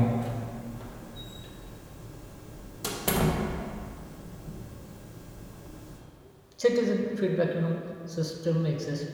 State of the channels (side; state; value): both; identical; correlation 1.00